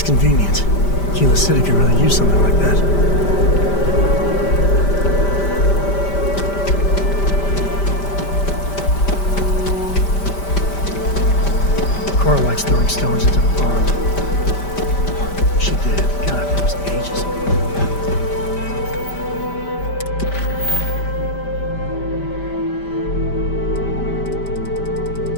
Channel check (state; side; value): late; right; 5.1 ms